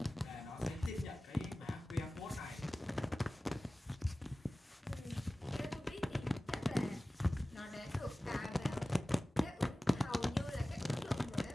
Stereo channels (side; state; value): both; normal; correlation 0.97